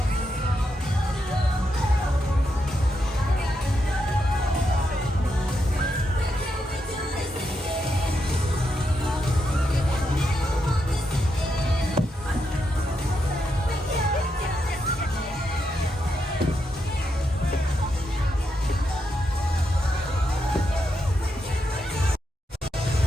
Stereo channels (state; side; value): normal; both; correlation 0.83